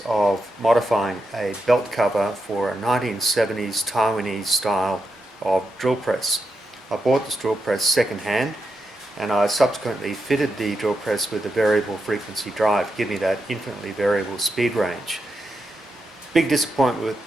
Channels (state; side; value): normal; both; correlation 0.86